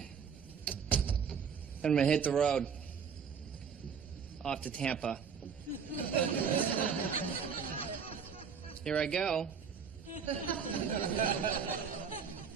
gonna hit the road. Off to Tampa. Here I go.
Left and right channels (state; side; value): quieter; left; 6.6 dB